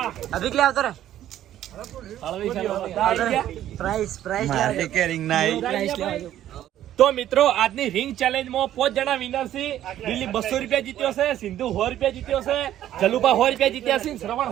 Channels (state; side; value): quieter; left; 12.2 dB